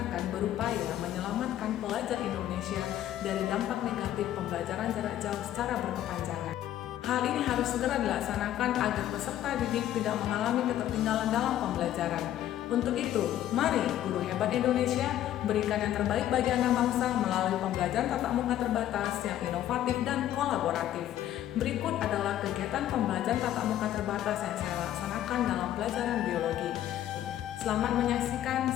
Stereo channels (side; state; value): right; quieter; 12.2 dB